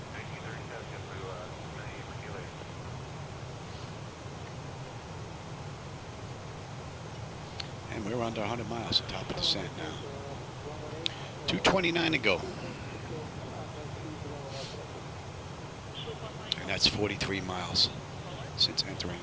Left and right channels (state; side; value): identical; both; correlation 1.00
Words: 1937, JetBlue 98 for QA. And we're under 100 miles at top of descent now. 229 to go. And that's 43 miles since entering